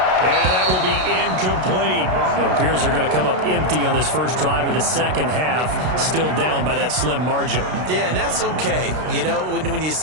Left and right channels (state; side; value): late; left; 32 ms